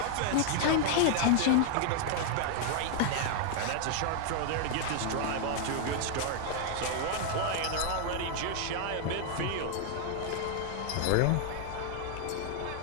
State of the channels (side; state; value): both; different; correlation 0.00